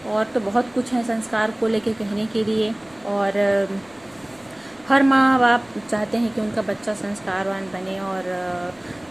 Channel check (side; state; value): left; noise; rumble, 29 dB below the sound